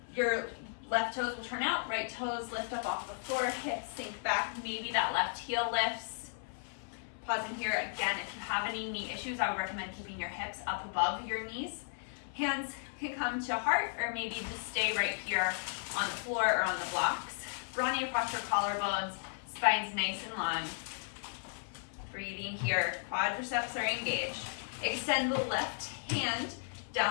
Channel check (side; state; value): right; silent; 54 dB below the other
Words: Your left toes will turn out, right toes lift up off the floor, hips sink back, maybe that left heel lifts. Pausing here again, if you have any knee issues, I would recommend keeping your hips up above your knees. Hands can come to heart, or maybe just stay right here on the floor or on the blocks. Broadening across your collarbones, spine's nice and long. Breathing here, quadriceps are engaged. Extend the left hand